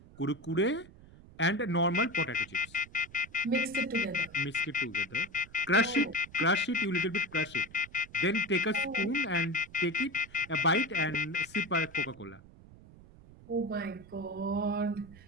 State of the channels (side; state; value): right; noise; rumble, 21 dB below the sound